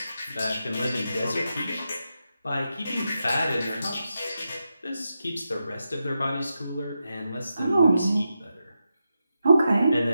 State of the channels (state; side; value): inverted; both; correlation -0.87